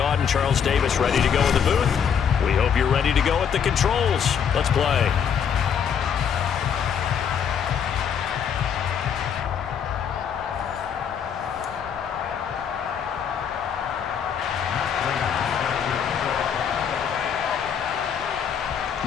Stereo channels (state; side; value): quieter; right; 7.7 dB